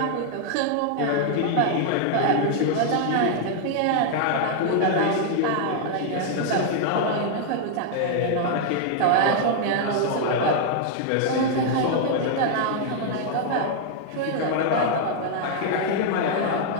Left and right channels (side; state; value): both; different; correlation 0.00